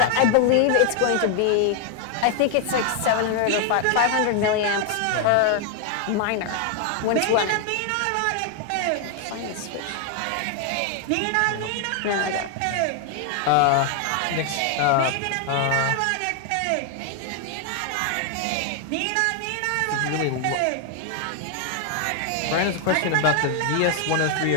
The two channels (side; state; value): both; different; correlation 0.00